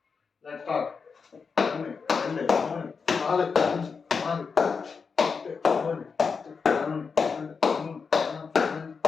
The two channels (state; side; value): quieter; right; 5.4 dB